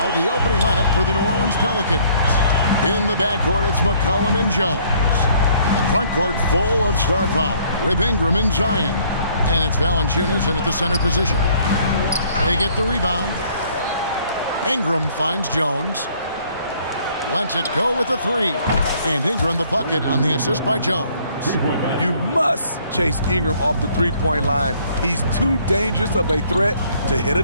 the opening lineup for the New Orleans Pelicans. In the backcourt, it's McCollum and Jones. The front court full of star power with Ingram and Zion. And it's Valanciunas in at the center position. They get the rebound. Ingram finds Jones. Lets it go with a three. And Ingram the bucket on the assist by Jones. You must chase Ingram off the three-point line. He's too dangerous of a threat to hit a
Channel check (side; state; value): both; inverted; correlation -0.61